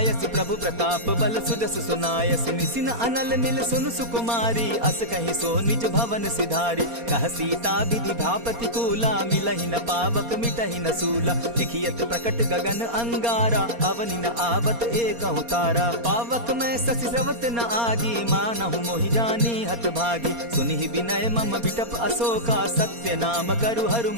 प्रभु प्रताप बल सुजस सुनायसि। निसिन अनल मिल सुन सुकुमारी, अस कहि सो निज भवन सिधारी। कह सीता विधि भापति कूला, मिलहि न पावक मिटहि न सूला। देखियत प्रकट गगन अंगारा, अवनि न आवत एकहु तारा। पावक मैं शशि स्रवत न आगी, मानहु मोहि जानी हत भागी। सुनिहि विनय मम बिटप अशोका, सत्य नाम करु हरु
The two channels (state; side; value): late; left; 4.3 ms